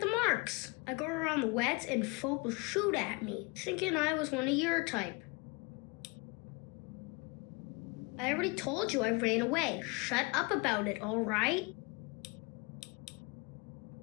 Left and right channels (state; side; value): quieter; right; 28.1 dB